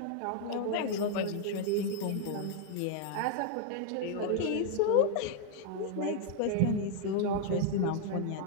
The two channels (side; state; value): both; different; correlation 0.00